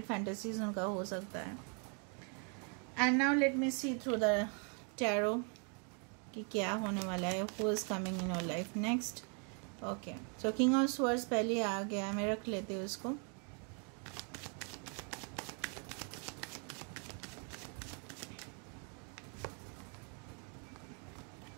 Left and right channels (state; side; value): quieter; left; 38.8 dB